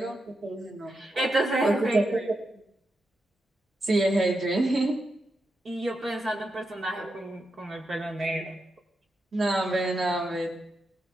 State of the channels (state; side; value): normal; both; correlation 0.86